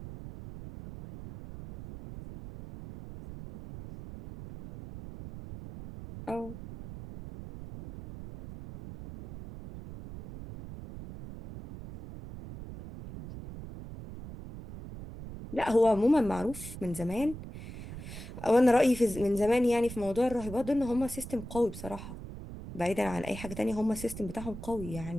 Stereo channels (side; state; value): right; noise; rumble, 12 dB below the sound